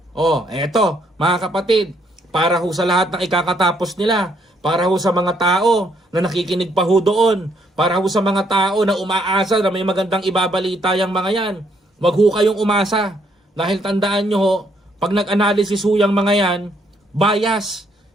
Eto, mga kapatid, para ho sa lahat ng ikakatapos nila, para ho sa mga tao na nakikinig pa ho doon, para ho sa mga tao na umaasa na may magandang ibabalita yung mga yan, wag ho kayong umasa. Dahil tandaan nyo ho, pag nag-analysis ho yung mga yan, bias,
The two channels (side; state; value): both; normal; correlation 0.71